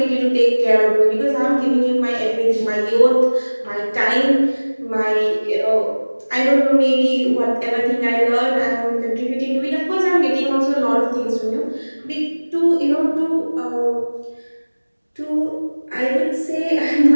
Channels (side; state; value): both; inverted; correlation -1.00